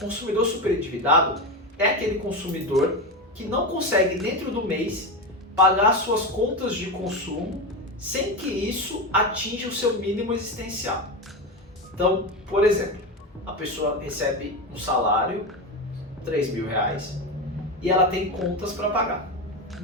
superendividado é aquele consumidor que não consegue dentro do mês pagar suas contas de consumo sem que isso atinja o seu mínimo existencial. Então, por exemplo, a pessoa recebe um salário, R$ 3.000, e ela tem contas para pagar.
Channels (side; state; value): both; normal; correlation 0.18